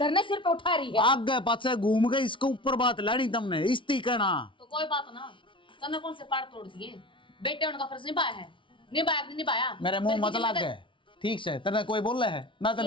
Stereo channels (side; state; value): right; late; 0.25 ms